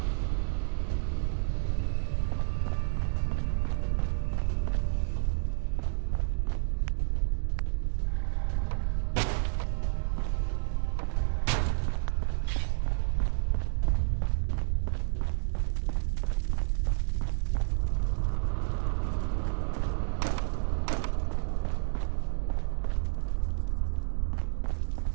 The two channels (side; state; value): left; silent; digital silence